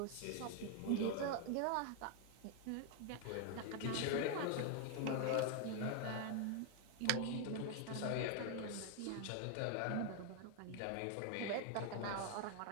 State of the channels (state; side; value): different; both; correlation 0.00